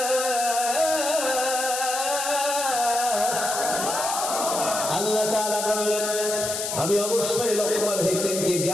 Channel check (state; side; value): noise; left; hiss, 3 dB below the sound